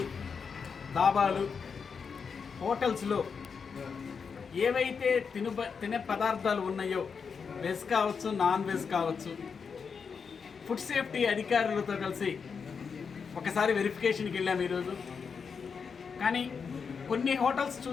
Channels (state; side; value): quieter; right; 5.9 dB